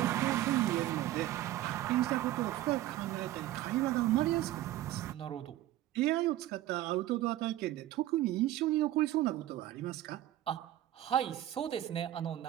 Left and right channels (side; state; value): left; quieter; 14.4 dB